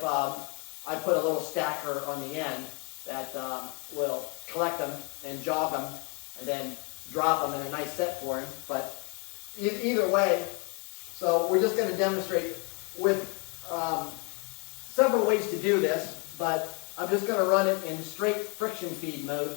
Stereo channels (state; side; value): quieter; right; 33.5 dB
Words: I put a little stacker on the end that will collect them and jog them and then drop them in a nice set for him. But either way, so we're just going to demonstrate with several ways to do this, but I'm just going to run it in straight friction feed mode